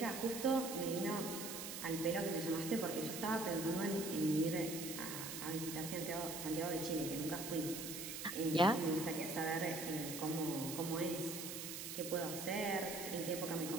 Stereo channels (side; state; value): right; noise; hiss, 6 dB below the sound